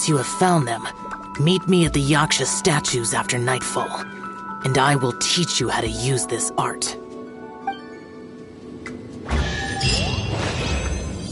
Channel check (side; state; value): both; identical; correlation 1.00